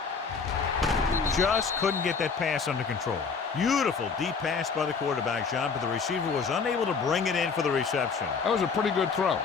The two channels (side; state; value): right; quieter; 5.3 dB